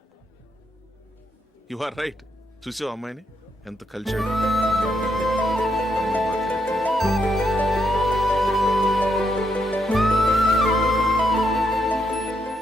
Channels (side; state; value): both; normal; correlation 0.78